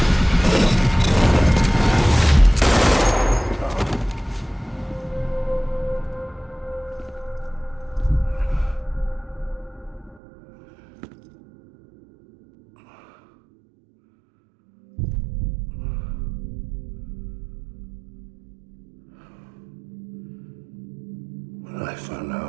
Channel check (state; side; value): drops out; left; at 10.2 s